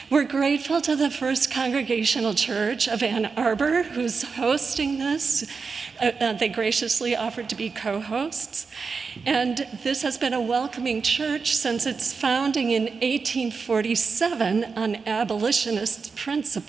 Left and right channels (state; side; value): quieter; left; 5.0 dB